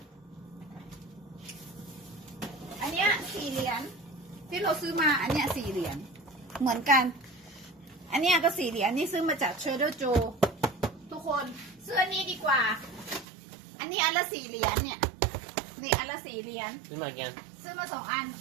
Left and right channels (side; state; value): left; drops out; at 13.2 s